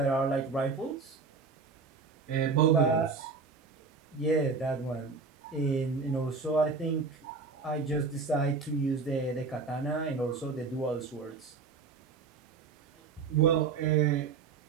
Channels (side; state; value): left; quieter; 4.8 dB